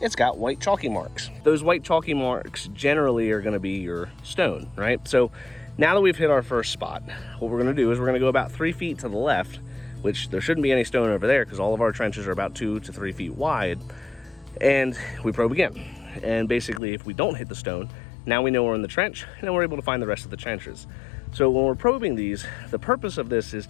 got white chalky marks. Those white chalky marks generally are gonna be your stone, right? So now that we've hit our first spot, what we're gonna do is we're gonna go about 3 feet to the left, which there shouldn't be any stone over there because all of our trenches are about 2 to 3 feet wide, and we probe again. And basically, if we don't hit the stone, now we know we're in the trench, and then we're able to find the rest of the trenches. So when we're probing these, the purpose of this is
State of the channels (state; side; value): drops out; right; at 16.8 s